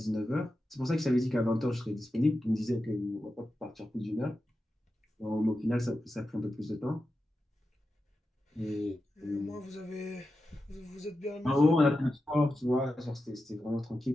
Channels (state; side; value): normal; both; correlation 0.91